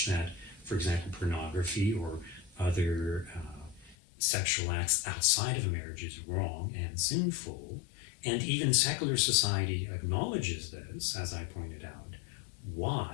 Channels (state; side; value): drops out; right; at 4.0 s